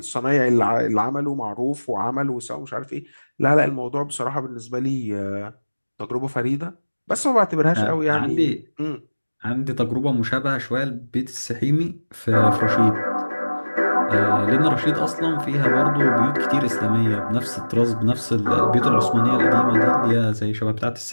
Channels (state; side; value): inverted; both; correlation -1.00